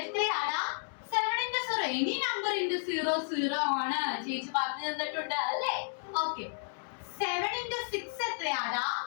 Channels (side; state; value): right; silent; digital silence